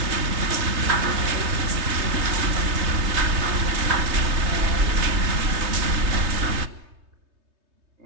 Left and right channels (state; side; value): late; left; 3.3 ms